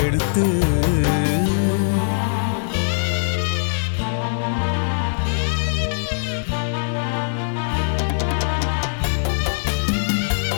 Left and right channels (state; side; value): silent; right; 65 dB below the other